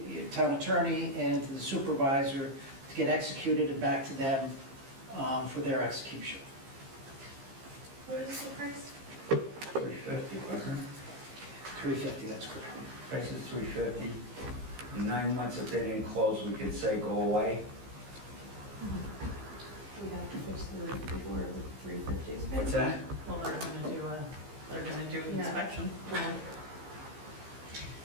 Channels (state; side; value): late; left; 15 ms